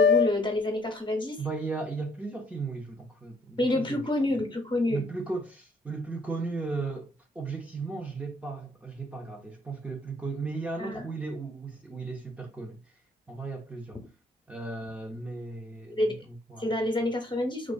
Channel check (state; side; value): normal; both; correlation 0.63